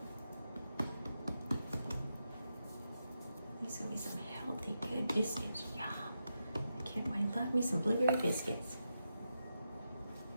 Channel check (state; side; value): inverted; both; correlation -0.87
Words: These are gonna be some healthy, good biscuits. Yum. I can't wait. Love me some blueberry biscuits.